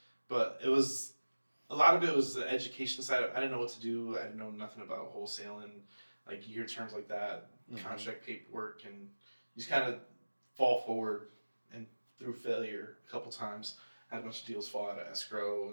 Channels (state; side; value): inverted; both; correlation -1.00